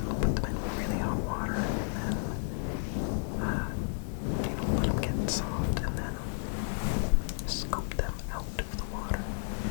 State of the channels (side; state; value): right; silent; digital silence